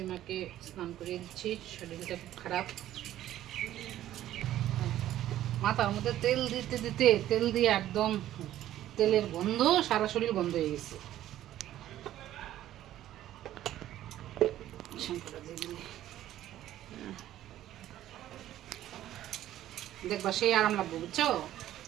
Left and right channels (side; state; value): left; quieter; 13.0 dB